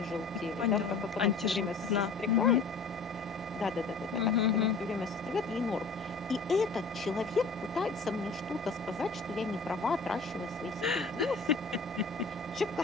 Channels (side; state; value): right; quieter; 4.2 dB